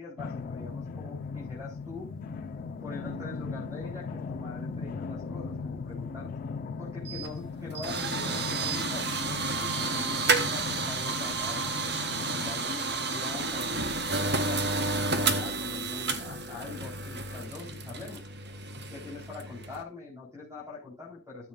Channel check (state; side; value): normal; both; correlation 0.21